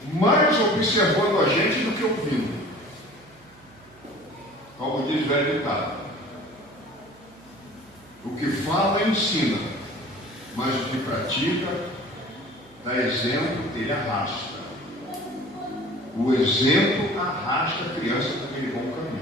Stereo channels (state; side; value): noise; right; hum, 27 dB below the sound